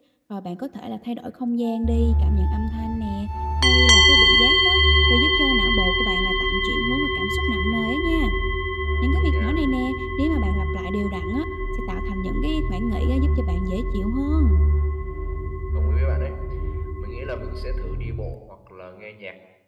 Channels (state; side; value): identical; both; correlation 1.00